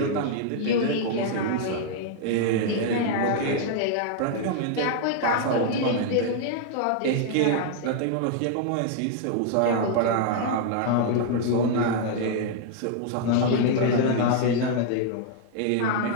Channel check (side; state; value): both; different; correlation 0.00